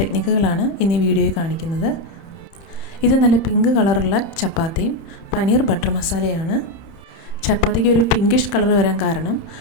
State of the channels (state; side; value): late; right; 30 ms